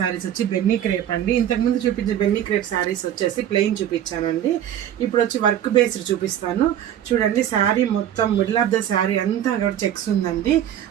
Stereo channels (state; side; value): quieter; left; 10.8 dB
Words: వచ్చి బెన్నీ క్రేప్ అండి. ఇంతకుముందు చూపించే బెన్నీ క్రేప్ శారీస్ వచ్చేసి ప్లెయిన్ చూపించానండి. ఇప్పుడు వచ్చి వర్క్ బేస్డ్ చూపిస్తాను. చూడండి, శారీ మొత్తం మిడిల్ ఆఫ్ ద శారీ అంతా అక్కడ చెక్స్ ఉందండి.